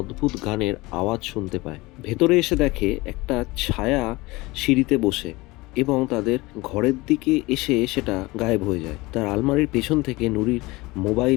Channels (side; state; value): right; quieter; 22.0 dB